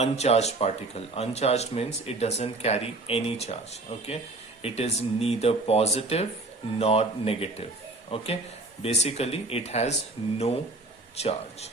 particle. Uncharged means it doesn't carry any charge. Okay, it is neither positive nor negative. Okay, basically it has no charge.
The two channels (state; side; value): quieter; left; 3.0 dB